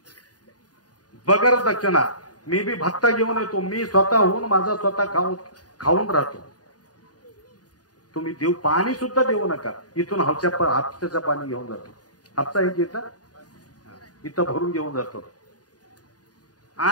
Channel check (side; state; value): right; late; 0.68 ms